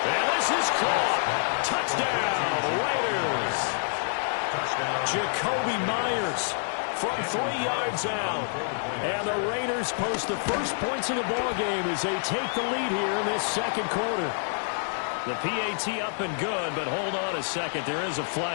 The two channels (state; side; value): silent; right; digital silence